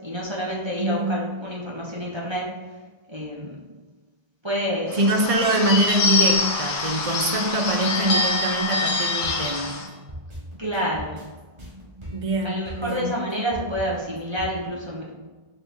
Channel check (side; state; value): left; late; 1.6 ms